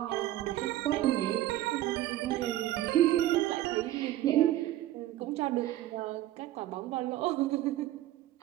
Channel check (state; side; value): quieter; left; 14.4 dB